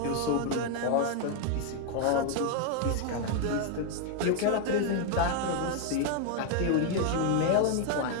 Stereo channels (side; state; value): both; different; correlation 0.00